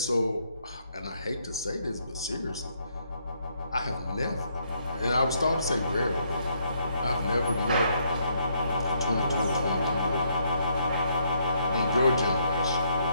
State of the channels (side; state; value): both; inverted; correlation -0.72